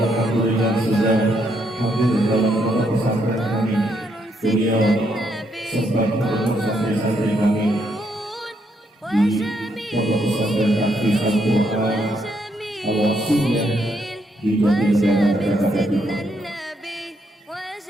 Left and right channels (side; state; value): both; normal; correlation 0.75